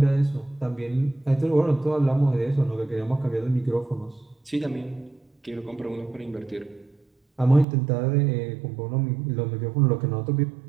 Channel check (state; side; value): drops out; left; at 7.7 s